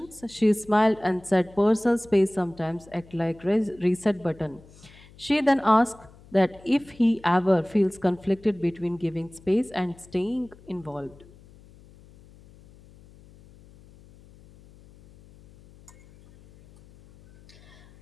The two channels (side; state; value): left; noise; hum, 24 dB below the sound